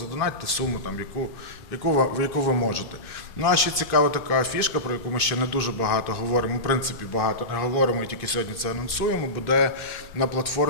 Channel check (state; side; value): late; right; 2.6 ms